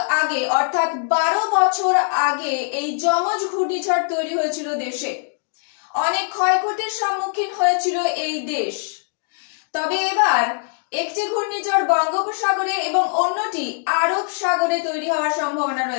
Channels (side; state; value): right; silent; 60 dB below the other